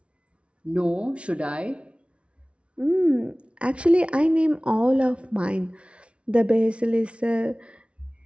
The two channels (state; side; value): late; left; 0.060 ms